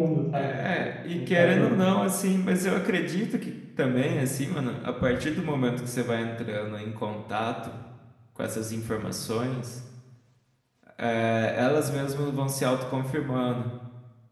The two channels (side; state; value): both; identical; correlation 1.00